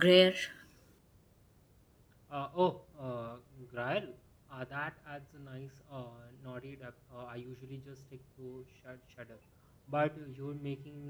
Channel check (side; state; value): both; identical; correlation 1.00